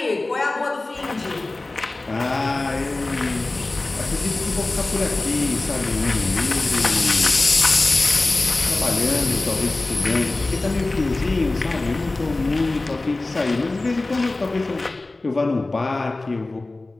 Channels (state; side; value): quieter; right; 3.1 dB